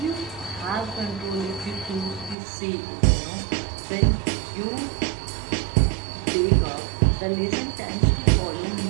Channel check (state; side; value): drops out; left; at 2.4 s